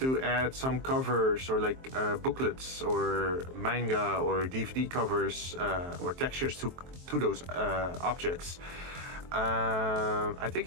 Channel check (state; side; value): late; left; 23 ms